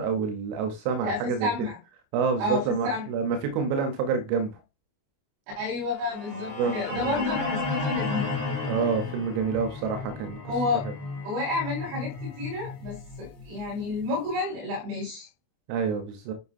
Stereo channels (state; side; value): late; left; 29 ms